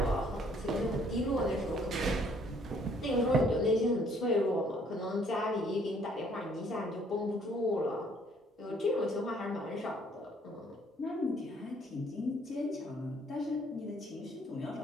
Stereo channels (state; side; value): normal; both; correlation 0.63